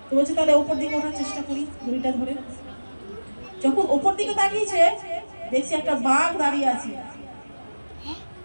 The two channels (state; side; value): inverted; both; correlation -1.00